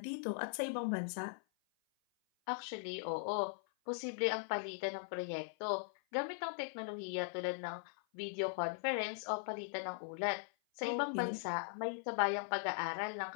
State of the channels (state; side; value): silent; right; 51 dB below the other